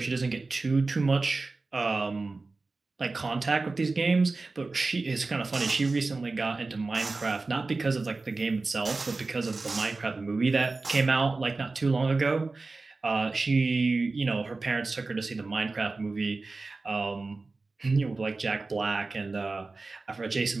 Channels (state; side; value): quieter; left; 3.6 dB